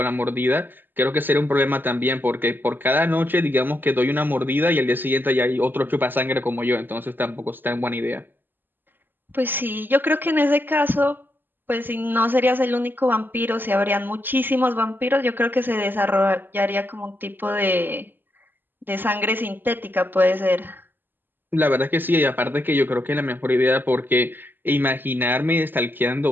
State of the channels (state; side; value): late; left; 0.093 ms